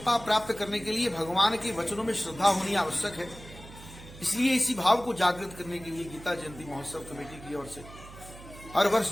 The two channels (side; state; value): right; noise; hum, 17 dB below the sound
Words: प्राप्त करने के लिए भगवान के वचनों में श्रद्धा होनी आवश्यक है। इसलिए इसी भाव को जागृत करने के लिए गीता जयंती महोत्सव कमेटी की ओर से हर वर्ष